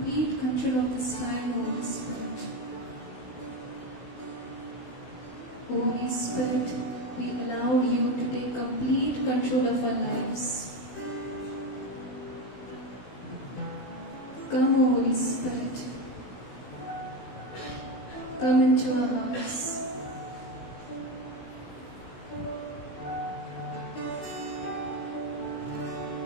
control of this time, Holy Spirit. Holy Spirit, we allow you to take complete control of our lives. Come, Holy Spirit. Come into our hearts.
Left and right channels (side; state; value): right; late; 16 ms